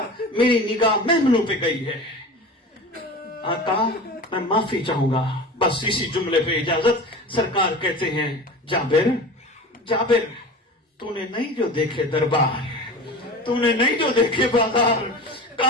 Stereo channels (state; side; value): normal; both; correlation 0.34